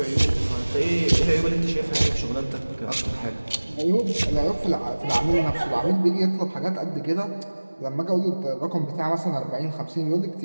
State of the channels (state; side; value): inverted; both; correlation -1.00